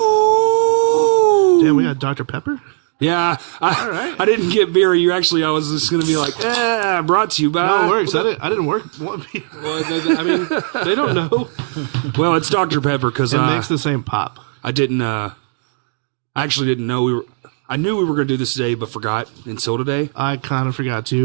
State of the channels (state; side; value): silent; left; digital silence